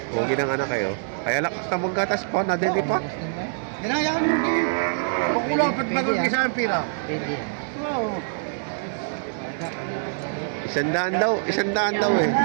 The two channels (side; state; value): left; silent; digital silence